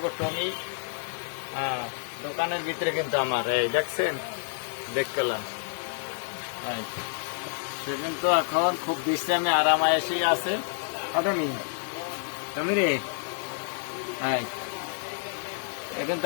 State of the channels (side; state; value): right; silent; digital silence